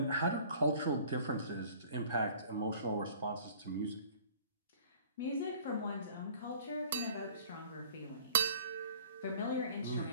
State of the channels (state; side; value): inverted; both; correlation -0.50